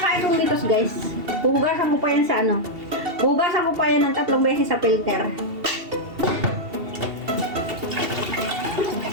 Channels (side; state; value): left; late; 2.7 ms